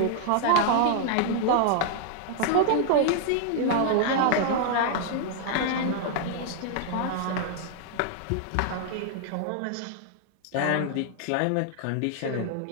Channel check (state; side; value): different; both; correlation 0.00